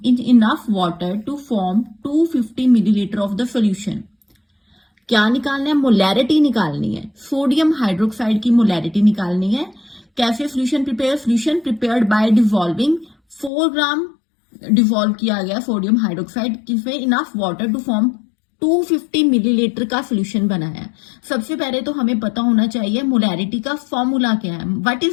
in enough water to form 250 milliliter of the solution. क्या निकालना है? Molarity निकालनी है, sodium hydroxide की molarity निकालनी है. कैसे solution prepared by dissolving 4 gram dissolve किया गया सोडियम हाइड्रोक्साइड किसमें enough water to form 250 millilitre का सोल्यूशन बनाया है. सबसे पहले तो हमें पता होना चाहिए मोलैरिटी का फॉर्मूला क्या है. What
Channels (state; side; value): drops out; right; at 13.5 s